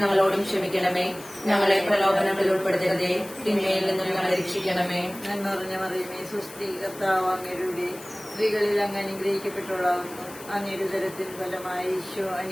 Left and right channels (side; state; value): left; noise; hiss, 17 dB below the sound